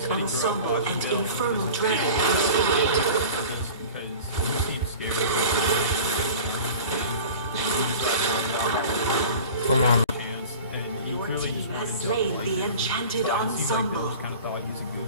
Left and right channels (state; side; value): inverted; both; correlation -0.39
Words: Ensemble and Infernal Dragon are spotted. Come on. Your team has slain the Enchanted Ensemble. Kind of thought he was a